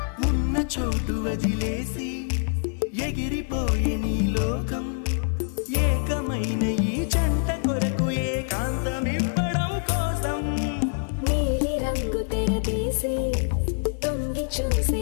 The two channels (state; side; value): silent; right; 61 dB below the other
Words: ఉన్న చోటు వదిలేసి ఎగిరిపోయే నీ లోకం ఏకమైన ఈ జంట కొరకు ఏకాంతమివ్వడం కోసం నీలి రంగు తెరదీసే తొంగి చూసే